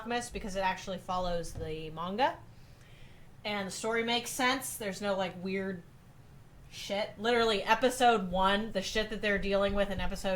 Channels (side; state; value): both; identical; correlation 1.00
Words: because it actually follows the manga. And the story makes sense. There's no, like, weird shit. Literally, episode 1, the shit that they're dealing with in